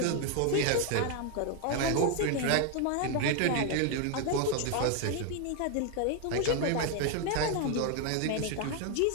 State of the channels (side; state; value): both; different; correlation 0.01